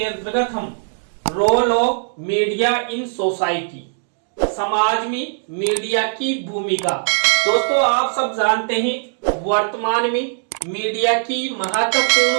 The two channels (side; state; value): left; silent; digital silence